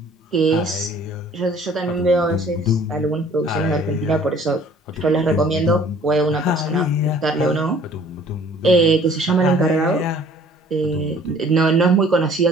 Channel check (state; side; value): normal; both; correlation 0.54